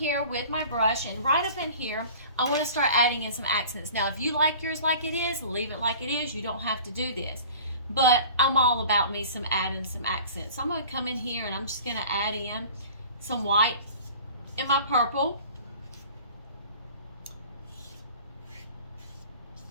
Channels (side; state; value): both; inverted; correlation -0.43